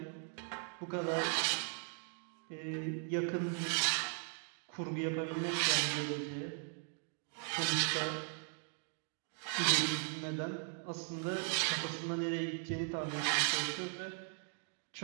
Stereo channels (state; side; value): silent; left; 52 dB below the other